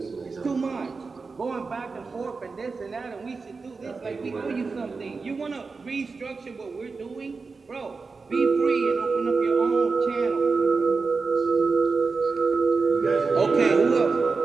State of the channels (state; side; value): quieter; left; 4.4 dB